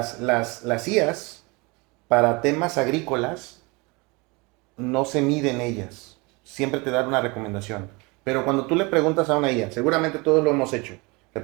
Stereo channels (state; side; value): quieter; left; 26.7 dB